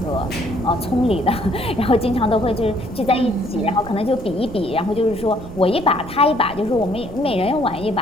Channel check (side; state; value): right; noise; rumble, 14 dB below the sound